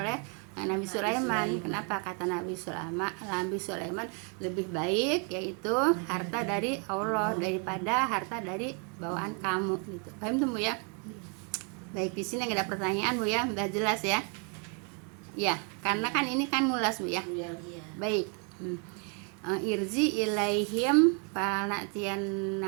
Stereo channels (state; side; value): quieter; left; 37.6 dB